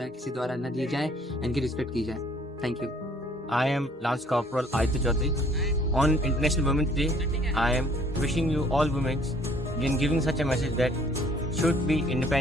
किसी द्वारा न दी जाए, इनकी रिस्पेक्ट की जाए। Thank you. I am Lance Corporal Aditya Chaudhary. On International Women's Day, I am wishing you all women in giving such a message that should be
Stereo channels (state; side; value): normal; both; correlation 0.59